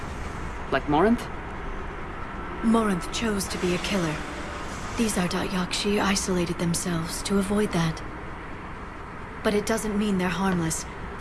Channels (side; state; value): both; identical; correlation 1.00